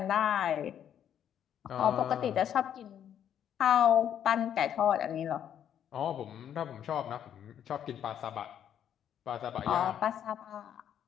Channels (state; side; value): quieter; right; 9.6 dB